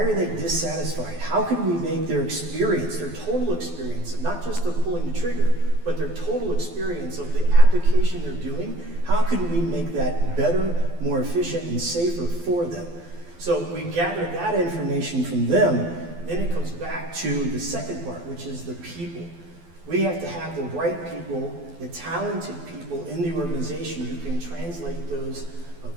they dissatisfied? How can we make their experience, their total experience, not just of pulling the trigger, but their total experience of the application they're doing, how can we make that better, more efficient, and safer for them? So we gather that information from them, then it comes back to the second part, which is the people. We have to have the right people, the talented people in the organization who can translate those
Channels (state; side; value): late; left; 12 ms